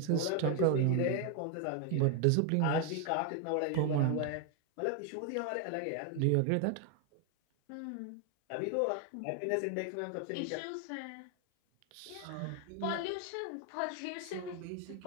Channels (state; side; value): different; both; correlation 0.01